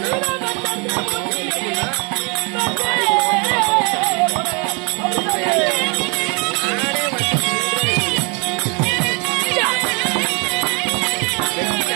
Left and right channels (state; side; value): quieter; left; 33.0 dB